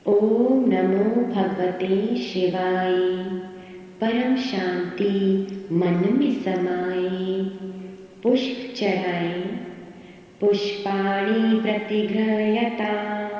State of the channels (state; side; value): identical; both; correlation 1.00